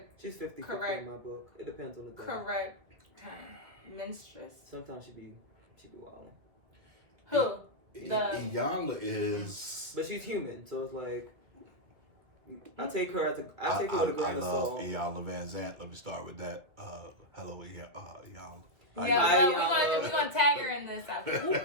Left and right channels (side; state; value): left; late; 2.4 ms